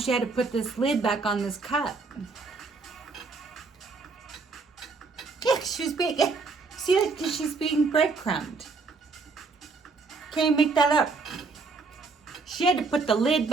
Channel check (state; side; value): quieter; left; 4.2 dB